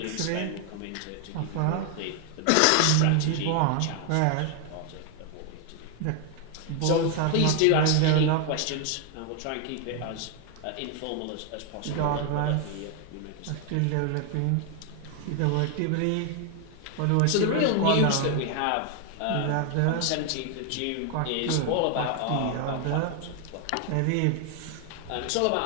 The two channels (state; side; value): different; both; correlation 0.00